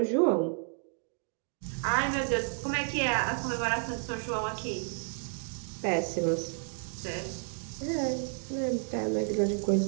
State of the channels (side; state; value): left; silent; 57 dB below the other